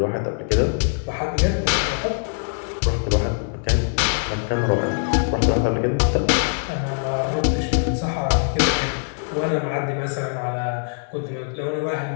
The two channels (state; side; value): silent; right; digital silence